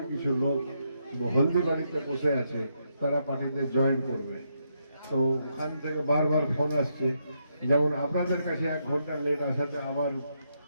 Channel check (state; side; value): inverted; both; correlation -0.79